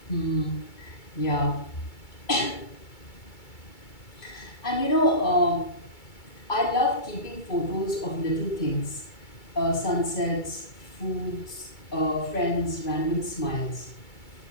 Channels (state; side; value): late; right; 2.3 ms